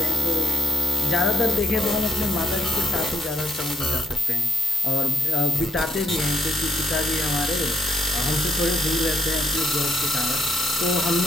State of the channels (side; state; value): both; normal; correlation 0.72